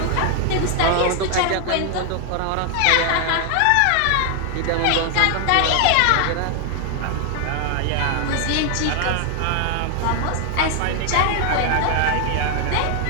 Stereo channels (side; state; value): both; different; correlation 0.00